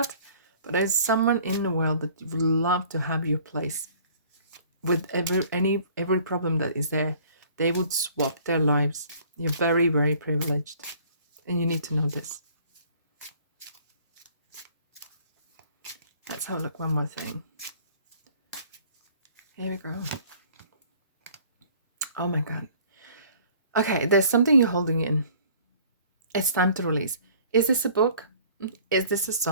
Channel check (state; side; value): inverted; both; correlation -0.53